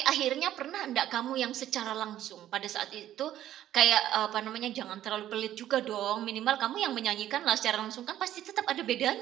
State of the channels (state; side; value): quieter; left; 12.4 dB